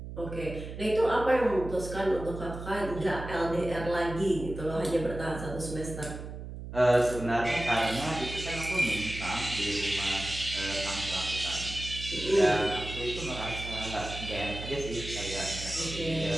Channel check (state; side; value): noise; right; hum, 9 dB below the sound